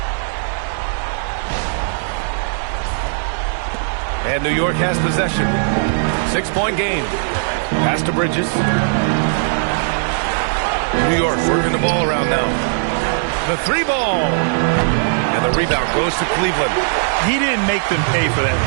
And New York has possession. 6-point game. Pass to Bridges. New York working the ball around now. The 3-ball. And the rebound goes to Cleveland. He didn't make them pay for that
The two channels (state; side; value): silent; left; digital silence